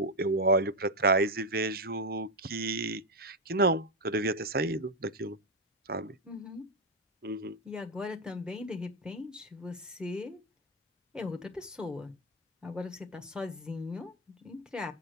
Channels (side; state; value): both; normal; correlation 0.05